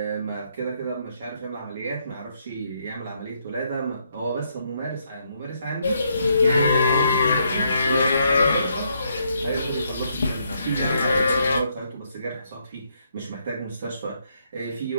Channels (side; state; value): both; inverted; correlation -0.74